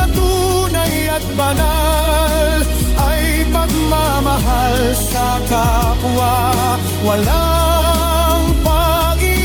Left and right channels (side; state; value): both; identical; correlation 1.00